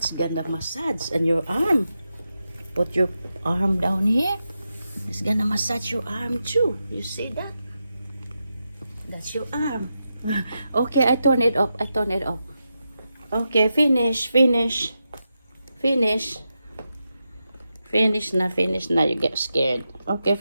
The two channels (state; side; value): inverted; both; correlation -0.87